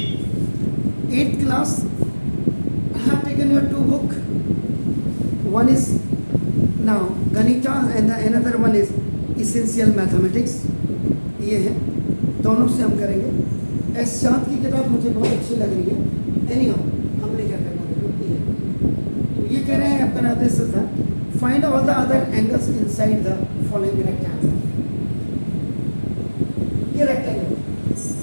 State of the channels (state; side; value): inverted; both; correlation -1.00